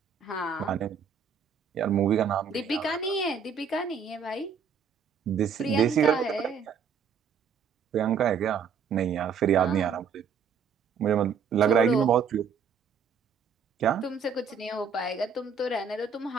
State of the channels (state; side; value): quieter; left; 6.2 dB